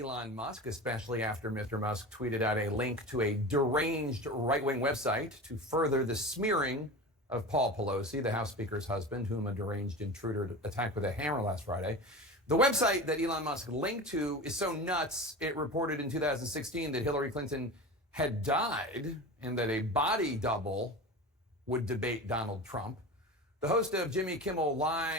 Musk, especially after Mr. Musk tweeted out a link to a deranged right-wing website to further the smearing of Paul Pelosi, the House Speaker's husband, whom a deranged intruder attacked with a hammer last Friday. The website that Elon Musk linked to is so nuts, it reported in 2016 that Hillary Clinton had died and that a body double would debate Donald Trump. The host of Jimmy Kimmel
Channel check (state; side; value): normal; both; correlation 0.30